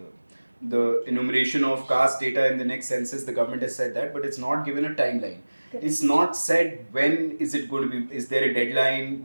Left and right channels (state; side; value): inverted; both; correlation -1.00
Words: the enumeration of caste data in the next census. The government has said that, but it's not given a timeline. It's not said when is it going to be, is there a deadline,